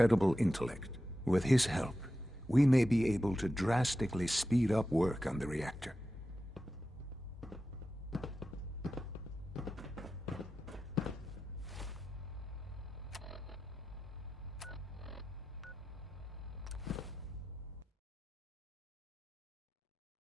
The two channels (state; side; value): normal; both; correlation 0.92